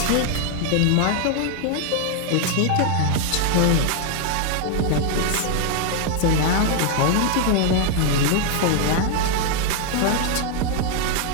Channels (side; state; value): both; different; correlation 0.00